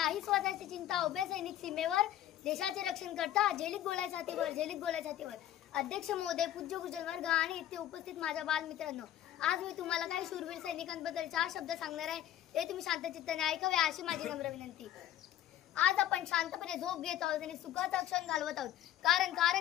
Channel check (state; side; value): quieter; right; 12.3 dB